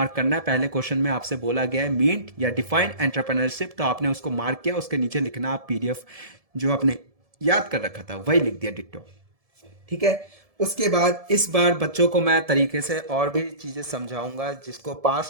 करना है, पहले क्वेश्चन में आपसे बोला गया है मीट या डिफाइन एंटरप्रेन्योरशिप, तो आपने उसको मार्क किया, उसके नीचे लिखना आप पीडीएफ जो आपने याद कर रखा था वही लिख दिया डिट्टो, ठीक है। उसके बाद इस बार बच्चों को मैं तरीके से और भी चीज़ें समझाऊंगा जिसको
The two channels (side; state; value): left; late; 1.7 ms